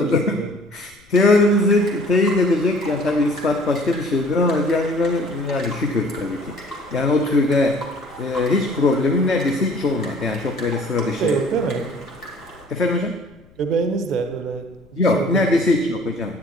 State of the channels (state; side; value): noise; left; rumble, 29 dB below the sound